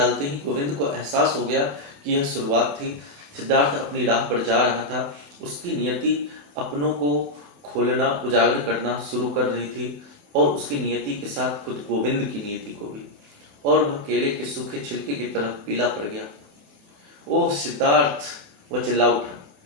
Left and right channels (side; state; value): left; late; 28 ms